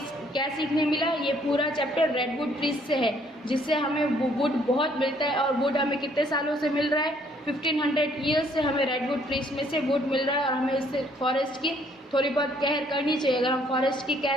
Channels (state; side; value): normal; both; correlation 0.64